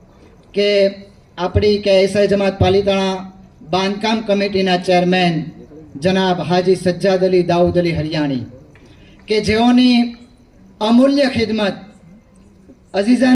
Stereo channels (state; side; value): identical; both; correlation 1.00